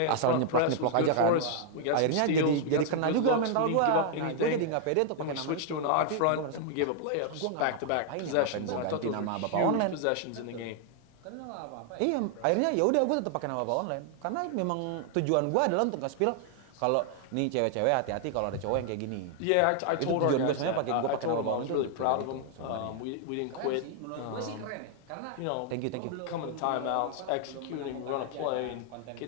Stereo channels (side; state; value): both; different; correlation 0.00